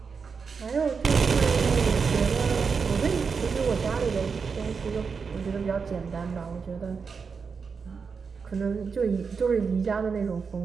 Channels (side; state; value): left; quieter; 5.5 dB